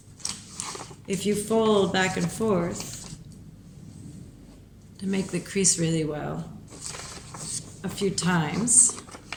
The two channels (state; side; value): identical; both; correlation 1.00